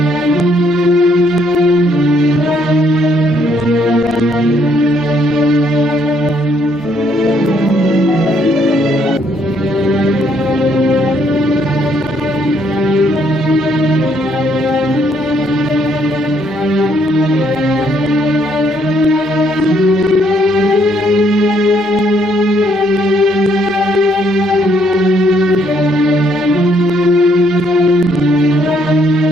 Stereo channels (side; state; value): both; normal; correlation 0.69